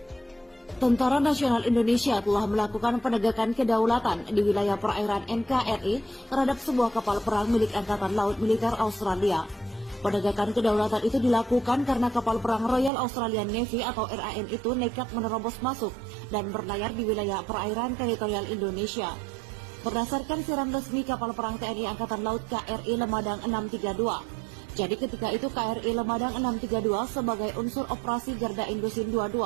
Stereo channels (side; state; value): left; drops out; at 12.9 s